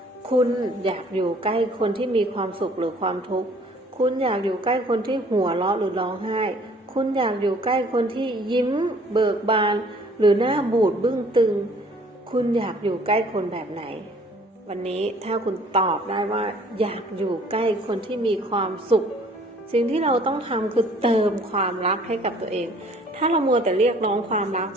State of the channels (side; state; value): both; normal; correlation 0.56